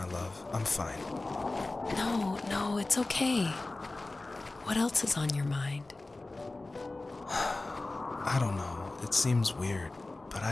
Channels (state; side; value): quieter; right; 3.1 dB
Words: love. I'm fine. No, it's okay. What else is on your mind? I don't know, it seems weird, but I